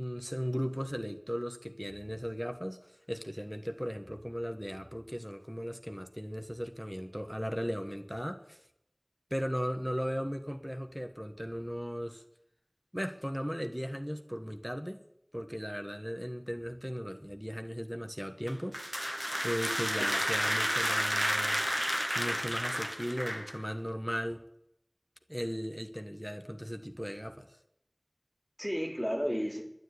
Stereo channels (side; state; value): both; identical; correlation 1.00